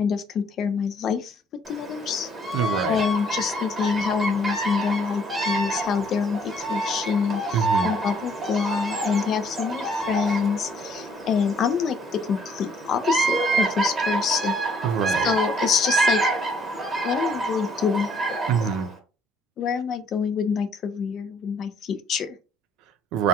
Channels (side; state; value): both; normal; correlation 0.63